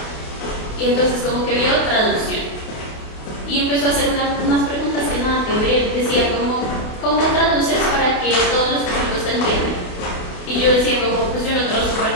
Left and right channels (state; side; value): late; right; 28 ms